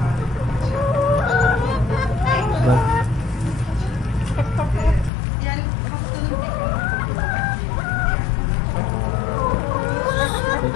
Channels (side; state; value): right; drops out; at 5.1 s